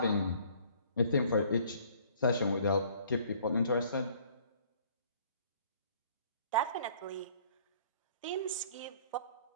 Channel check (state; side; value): inverted; both; correlation -0.56